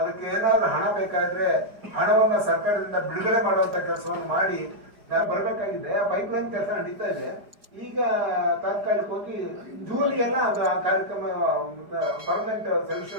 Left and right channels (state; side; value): late; left; 4.9 ms